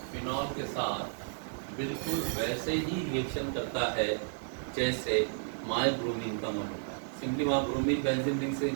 phenol के साथ बिल्कुल वैसे ही रिएक्शन करता है जैसे माइब्रोमीन का अमल होता है। सिंपली माइब्रोमीन बेंजीन रिंग से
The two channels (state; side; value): silent; left; digital silence